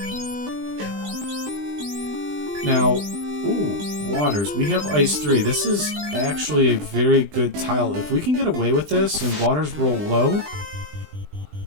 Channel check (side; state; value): left; late; 20 ms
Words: Now, Ooh, waters. We have ice 3. This is actually a very good tile. If we can get away with this and waters roll low,